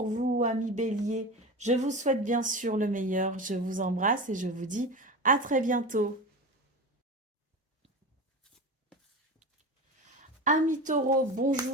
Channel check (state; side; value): normal; both; correlation 0.27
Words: vous, amis Bélier. Je vous souhaite bien sûr le meilleur. Je vous embrasse et je vous dis à très bientôt. Amis Taureaux,